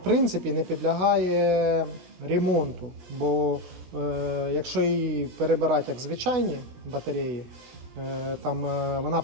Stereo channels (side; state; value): left; late; 16 ms